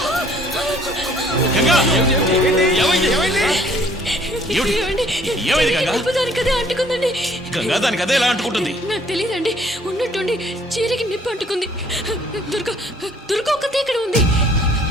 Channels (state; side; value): normal; both; correlation 0.59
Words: గంగా, ఏమైంది గంగా? దానికదే అంటుకుందండి. గంగా, దానికి అదే ఎలా అంటుకుంటుంది? నాకు తెలియదండి, ఉన్నట్టుండి చీరకి నిప్పు అంటుకుంది. దుర్గ ఒక్కతే ఇక్కడ ఉంది.